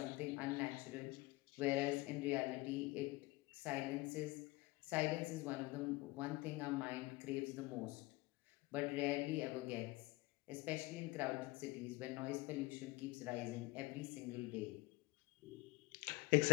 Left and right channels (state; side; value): quieter; right; 21.3 dB